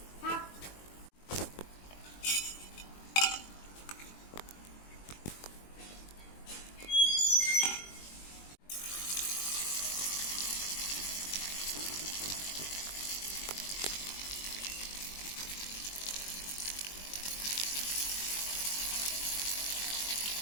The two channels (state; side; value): late; right; 21 ms